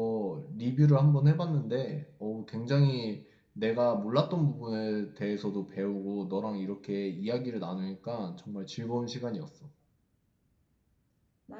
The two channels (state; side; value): identical; both; correlation 1.00